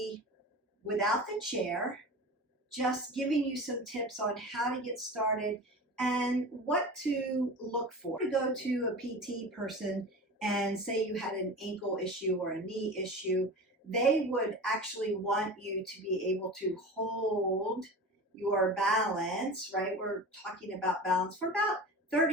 without the chair, just giving you some tips on how to get started and what to look for. To go to a PT person and say you had an ankle issue or a knee issue, they would actually want you to be able to hold your balance, right? We're talking about balance for about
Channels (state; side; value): normal; both; correlation 0.32